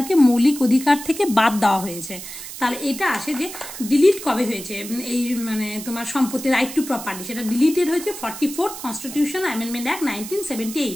মৌলিক অধিকার থেকে বাদ দেওয়া হয়েছে। তাহলে এটা আসে যে ডিলিট কবে হয়েছে এই মানে তোমার সম্পত্তি রাইট টু প্রপার্টি, সেটা ডিলিটেড হয়েছে 44th কনস্টিটিউশন অ্যামেন্ডমেন্ট অ্যাক্ট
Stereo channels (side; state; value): right; noise; hiss, 11 dB below the sound